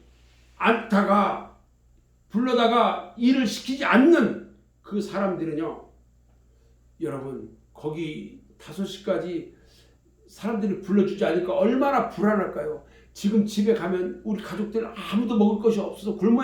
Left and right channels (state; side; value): identical; both; correlation 1.00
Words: 불러다가 일을 시키지 않는 그 사람들은요, 여러분 거기 5시까지 사람들이 불러주지 않으니까 얼마나 불안할까요? 지금 집에 가면 우리 가족들 아무도 먹을 것이 없어서